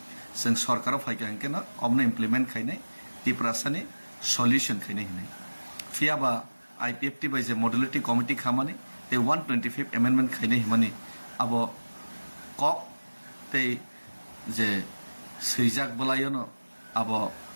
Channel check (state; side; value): inverted; both; correlation -1.00